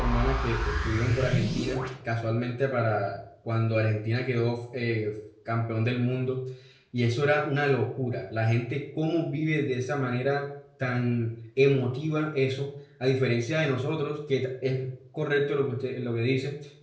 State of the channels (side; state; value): both; identical; correlation 1.00